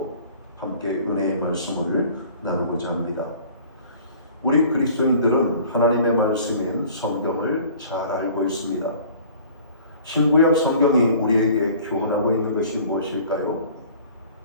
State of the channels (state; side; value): inverted; both; correlation -0.49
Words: 함께 은혜의 말씀을 나누고자 합니다. 우리 그리스도인들은 하나님의 말씀인 성경을 잘 알고 있습니다. 신구약 성경이 우리에게 교훈하고 있는 것이 무엇일까요?